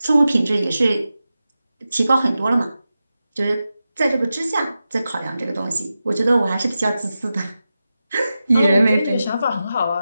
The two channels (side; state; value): both; inverted; correlation -0.92